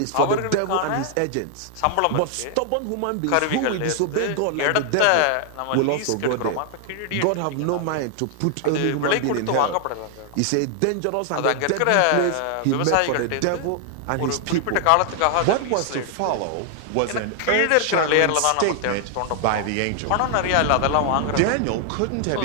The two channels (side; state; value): both; different; correlation 0.00